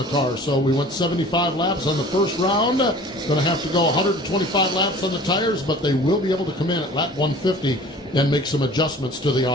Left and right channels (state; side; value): normal; both; correlation 0.45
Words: car. So we went 75 laps on the first round. Going to have to go 125 laps on the tires, but they will be able to come in at lap 150 and make some adjustments to the